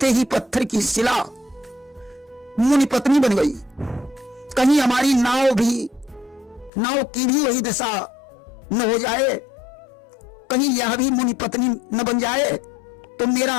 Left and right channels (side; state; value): right; drops out; at 6.7 s